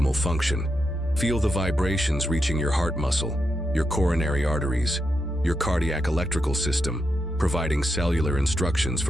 function." Feel the vibrations reaching your heart muscle, your coronary arteries, your cardiac electrical system, providing cellular instructions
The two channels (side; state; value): both; normal; correlation 0.85